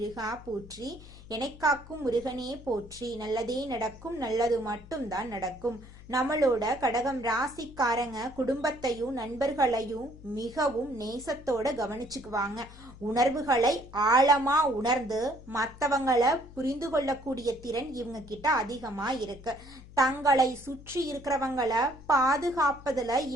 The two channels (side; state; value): left; noise; hum, 19 dB below the sound